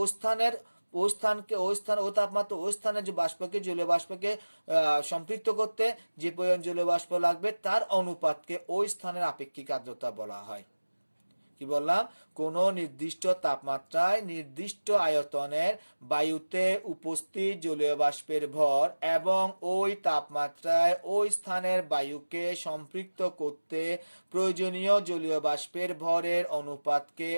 স্থানের ওই তাপমাত্রা ওই স্থানের যে বাষ্পকে, জলীয় বাষ্পকে সম্পৃক্ত করতে যে পরিমাণ জলীয় বাষ্প লাগবে তার অনুপাতকে ওই স্থানের আপেক্ষিক আর্দ্রতা বলা হয়। কি বললাম, কোন নির্দিষ্ট তাপমাত্রায় নির্দিষ্ট আয়তনের বায়ুতে উপস্থিত জলীয় বাষ্পের ভর এবং ওই তাপমাত্রায় ওই স্থানের বায়ুকে সম্পৃক্ত করতে প্রয়োজনীয় জলীয় বাষ্পের ভরের অনুপাতকে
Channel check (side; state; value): both; inverted; correlation -1.00